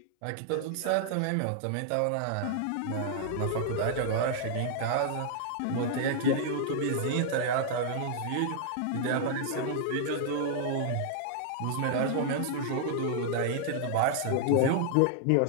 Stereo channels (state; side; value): different; both; correlation -0.01